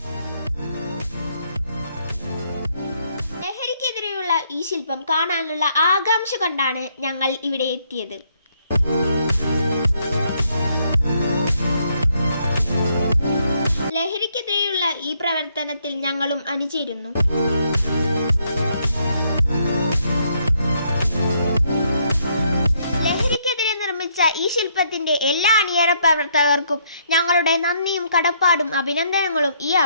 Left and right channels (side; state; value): both; inverted; correlation -0.71